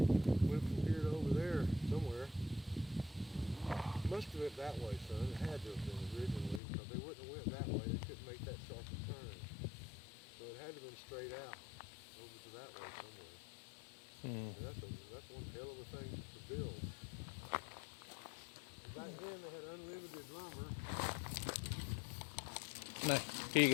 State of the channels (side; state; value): right; drops out; at 6.6 s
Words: Went from here to over there somewhere. Must have went that way, son. It had to have been originally, because they wouldn't have went that way. They couldn't make that sharp a turn. So it had to have been straight out over to that way somewhere. And that's one hell of a thing to build. Back then they had unlimited lumber. No, here you